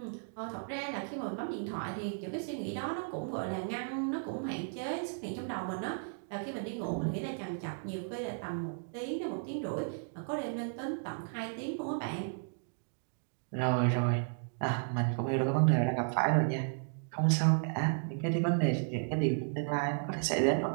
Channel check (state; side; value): silent; left; digital silence